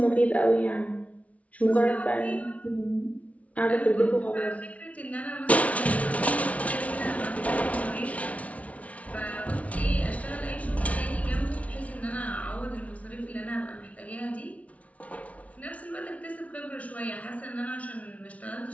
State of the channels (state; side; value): late; right; 0.066 ms